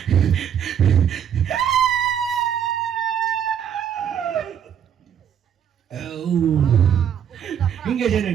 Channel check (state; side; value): quieter; left; 8.7 dB